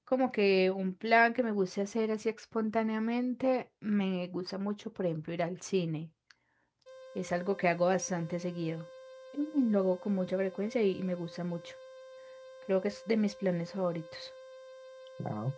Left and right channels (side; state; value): both; identical; correlation 1.00